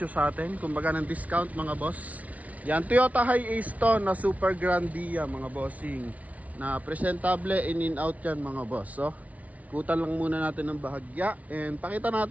sa atin, kumbaga ng discount mga boss. Yan, Toyota Hiace to na Super Grandia mga bossing, na presentable, in and out yan mga boss. So kutan lang muna natin ng bahagya and pakita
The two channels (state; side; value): late; left; 0.069 ms